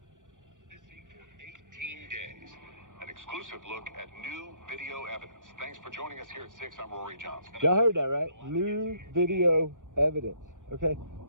Missing for 18 days. An exclusive look at new video evidence. Thanks for joining us here at 6. I'm Rory Johnson. Y'all heard that, right? New video evidence, okay?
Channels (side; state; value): left; late; 0.87 ms